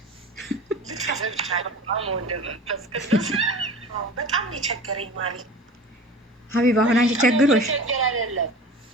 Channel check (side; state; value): both; normal; correlation 0.37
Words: በጣም የቸገረኝ ማለት ሀቢባ አሁን አንቺ ቸግሮሽ